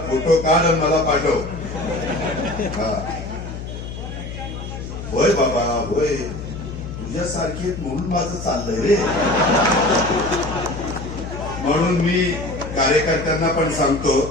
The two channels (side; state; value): left; noise; hum, 9 dB below the sound